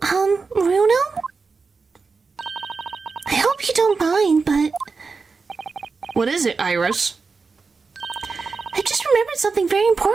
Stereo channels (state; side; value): quieter; left; 4.6 dB